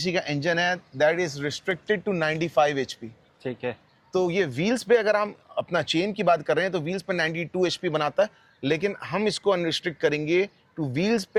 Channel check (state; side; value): identical; both; correlation 1.00